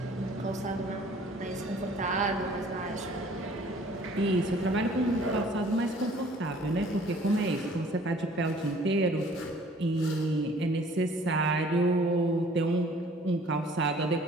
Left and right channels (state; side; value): normal; both; correlation 0.54